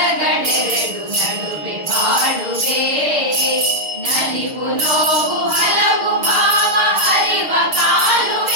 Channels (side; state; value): left; late; 6.5 ms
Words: ನಡುವೆ ಬಾಳುವೆ, ನಲಿವು ನೋವು ಹಲವು ಭಾವ ಹರಿವ